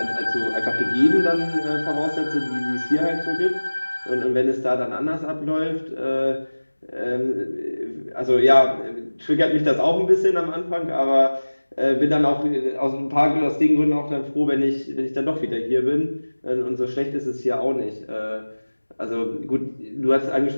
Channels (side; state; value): both; inverted; correlation -1.00